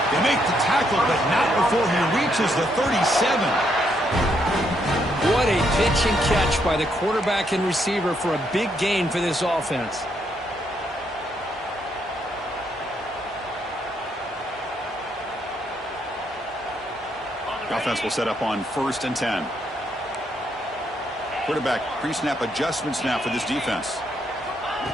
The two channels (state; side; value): normal; both; correlation 0.75